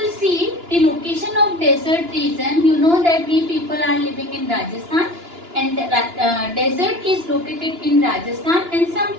see the location of desert region, you know that we people are living in Rajasthan and the desert is located in Rajasthan and some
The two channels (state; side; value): late; left; 2.9 ms